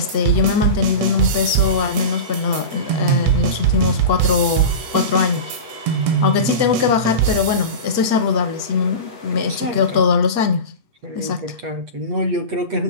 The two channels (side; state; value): left; late; 8.3 ms